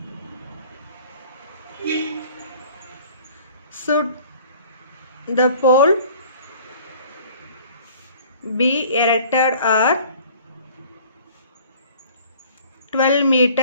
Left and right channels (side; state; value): both; inverted; correlation -0.50